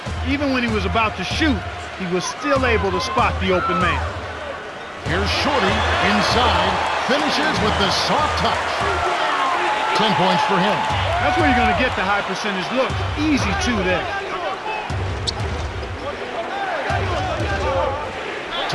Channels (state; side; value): identical; both; correlation 1.00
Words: Even when he was about to shoot, he was still able to spot the open man. Here's Shorty inside. Finishes with the soft touch. 10 points for him. That's where you're going to get the high percentage looks. Easy two there.